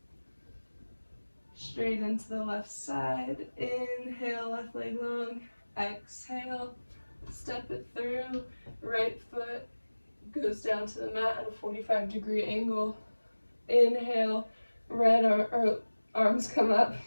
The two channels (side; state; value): both; inverted; correlation -1.00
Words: straight into the left side. Inhale, left leg long. Exhale, step it through. Right foot goes down to the mat at a 45-degree angle. Inhale, arms come up.